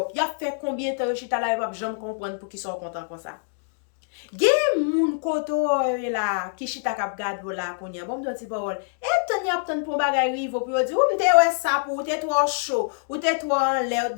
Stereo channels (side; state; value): right; silent; digital silence